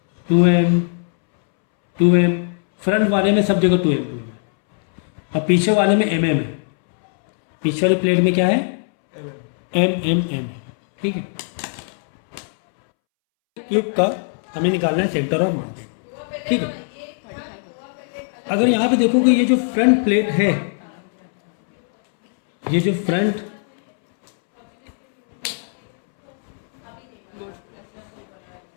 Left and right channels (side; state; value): right; silent; 66 dB below the other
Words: 2m 2m, front वाले में सब जगह 2m है और पीछे वाले में mm है। पीछे वाले प्लेट में क्या है, m है, ठीक है। क्यूब का हमें निकालना है सेंटर ऑफ मास, ठीक है। अगर यहाँ पे देखोगे ये जो फ्रंट प्लेट है, ये जो फ्रंट